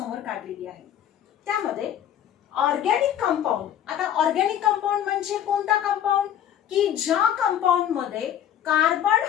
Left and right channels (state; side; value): quieter; right; 10.3 dB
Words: काढलेली आहे. त्यामध्ये ऑर्गॅनिक कंपाऊंड, आता ऑर्गॅनिक कंपाऊंड म्हणजे कोणता कंपाऊंड की ज्या कंपाऊंड मध्ये कार्बन